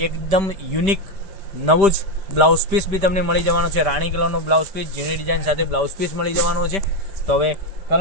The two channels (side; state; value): left; late; 5.1 ms